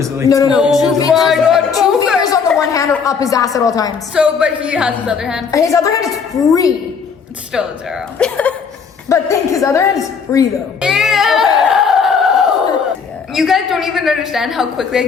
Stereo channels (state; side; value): quieter; right; 5.9 dB